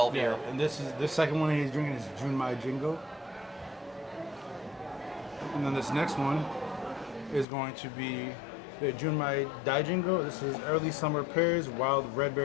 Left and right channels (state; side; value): drops out; right; at 7.5 s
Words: year. And this second one he's drinking is Junmai Jingo. And then this next one is going to be the Junmai Daijingo. This is early summer pears, wild red